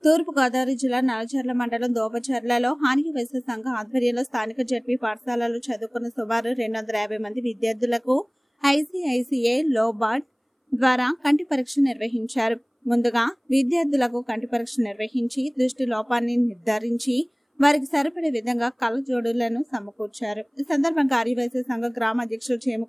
తూర్పు గోదావరి జిల్లా నల్లజర్ల మండలం దోపచర్లలో హాని వైశ్య సంఘ ఆధ్వర్యంలో స్థానిక జడ్పీ పాఠశాలలో చదువుకున్న సుమారు 250 మంది విద్యార్థులకు ఐసీఐసీఐ లోబార్డ్ ద్వారా కంటి పరీక్ష నిర్వహించారు. ముందుగా విద్యార్థులకు కంటి పరీక్ష నిర్వహించి దృష్టి లోపాన్ని నిర్ధారించి వారికి సరిపడే విధంగా కళ్ళజోడులను సమకూర్చారు. ఈ సందర్భంగా ఆర్యవైశ్య సంఘ గ్రామ అధ్యక్షుడు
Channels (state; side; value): identical; both; correlation 1.00